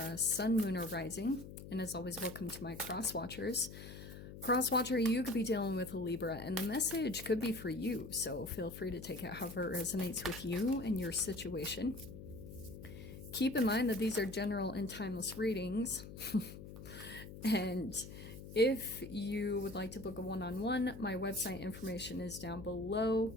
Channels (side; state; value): left; noise; hum, 12 dB below the sound